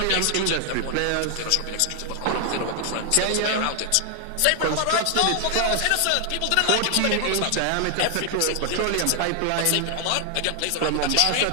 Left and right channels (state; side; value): different; both; correlation 0.00